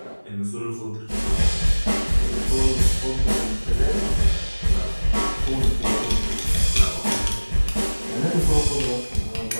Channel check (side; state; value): both; inverted; correlation -1.00